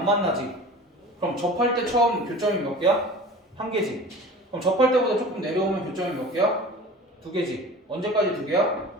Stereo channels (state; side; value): normal; both; correlation 0.40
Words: 만나지. 그럼 접할 때 처음 교점이 몇 개야? 1개지. 그럼 접할 때보다 조금 내려오면 교점이 몇 개야? 2개지. 언제까지 2개야?